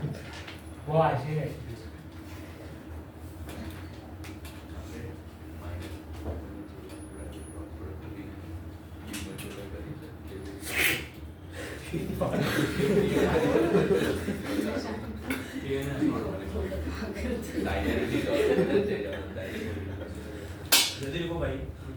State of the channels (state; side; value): identical; both; correlation 1.00